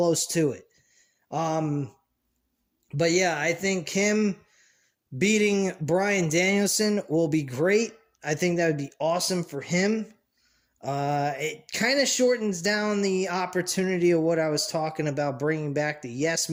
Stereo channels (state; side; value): identical; both; correlation 1.00